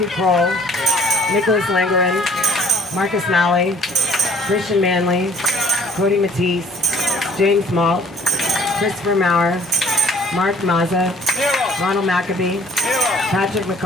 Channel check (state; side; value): normal; both; correlation 0.55